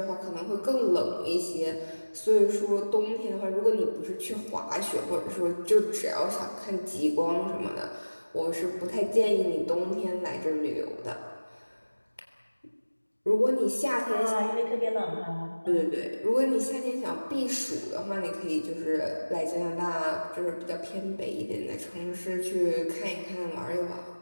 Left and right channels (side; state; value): both; inverted; correlation -1.00